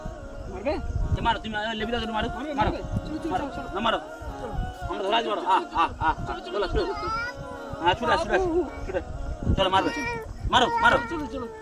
মারবে? মারো তুমি, লেবি দাও, মারো মারো না, মারো আমরা ধরা যাবো। চলো চলো, হ্যাঁ ছুটে ছুটে চলো, মারবে মারো মারো। চলো চলো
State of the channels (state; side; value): identical; both; correlation 1.00